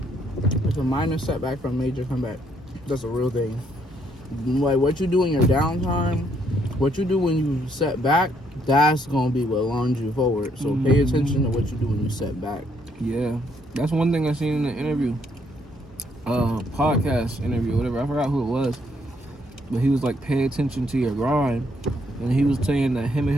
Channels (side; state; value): both; normal; correlation 0.71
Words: it's a minor setback from a major comeback. That's a real thing. Like, what you do in your downtime, what you do when you set back, that's gonna be what launches you forward. So pay attention to what you do when you set back. Yeah, that's one thing I seen in the interview, podcast interview, whatever. I forgot who it was, but he was like, pay attention to your grind. And he was saying that him and